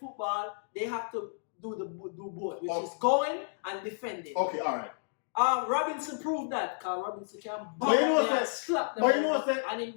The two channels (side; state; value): right; silent; digital silence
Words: they have to do both, which Oh. is going and defending. okay, all right. Robinson proved that, because Robinson can But you know what and I- slap them but you know what I- over and in